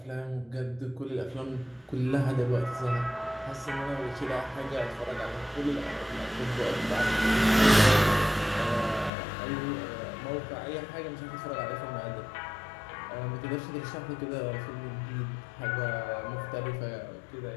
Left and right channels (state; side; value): drops out; right; at 9.1 s